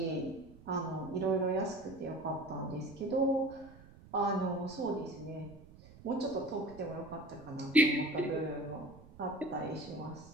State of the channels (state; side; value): noise; right; rumble, 20 dB below the sound